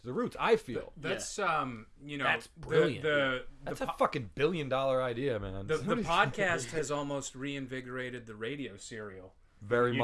the roots. I feel that's that's brilliant. That's a fucking $1 billion idea, man. The podcast has almost reinvigorated the radio serial. Very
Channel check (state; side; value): identical; both; correlation 1.00